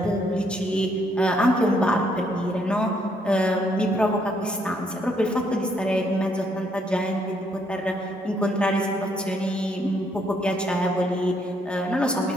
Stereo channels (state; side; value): normal; both; correlation 0.71